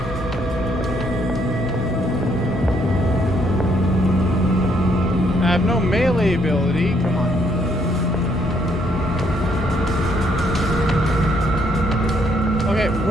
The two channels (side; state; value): both; normal; correlation 0.70